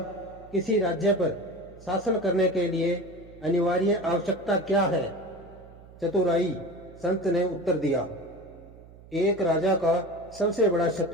किसी राज्य पर शासन करने के लिए अनिवार्य आवश्यकता क्या है? चतुराई, संत ने उत्तर दिया। एक राजा का सबसे बड़ा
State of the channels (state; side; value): noise; right; hum, 21 dB below the sound